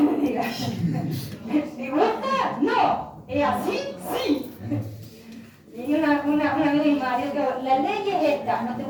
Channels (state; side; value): identical; both; correlation 1.00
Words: diga? ¿Me gusta? No. ¿Es así? Sí. Y una amiga de mi marido que la ley es esta, no te